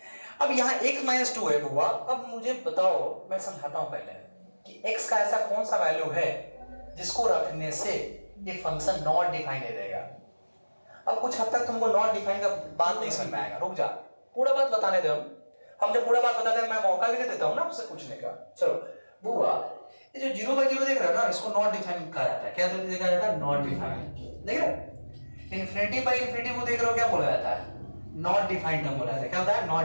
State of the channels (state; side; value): inverted; both; correlation -1.00